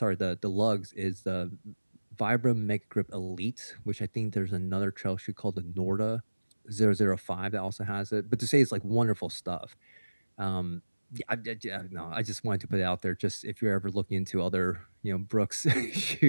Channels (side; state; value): both; inverted; correlation -1.00